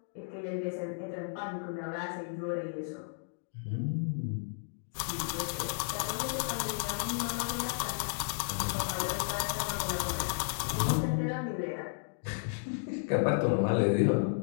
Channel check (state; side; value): silent; right; digital silence